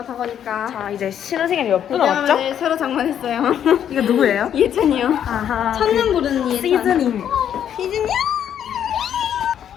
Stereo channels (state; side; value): quieter; right; 9.5 dB